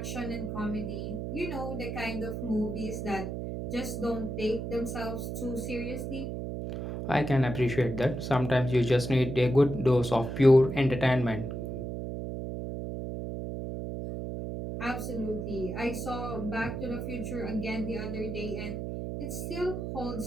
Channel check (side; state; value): right; noise; hum, 4 dB below the sound